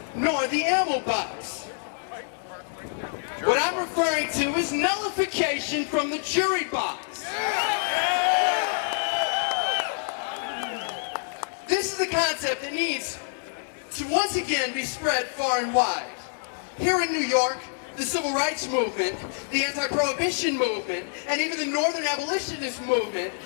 nor the ammo box. What I'm referring to is nullification from the jury box. This is a concept that needs to once again be spread far and wide. Here in New York, the civil rights movement, the anti-prohibition movement, and even the northern abolitionist movement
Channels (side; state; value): right; silent; 60 dB below the other